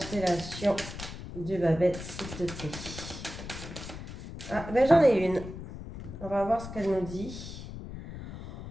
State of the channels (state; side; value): noise; left; rumble, 10 dB below the sound